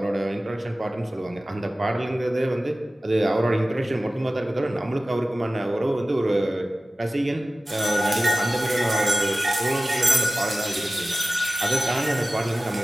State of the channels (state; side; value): normal; both; correlation 0.95